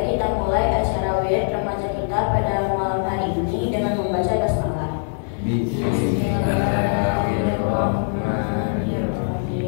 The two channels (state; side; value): silent; right; 64 dB below the other